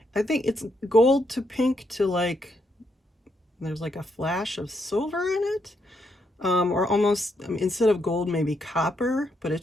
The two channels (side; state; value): both; normal; correlation 0.78